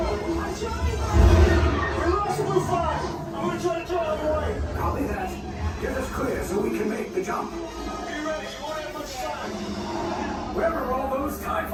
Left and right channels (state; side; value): identical; both; correlation 1.00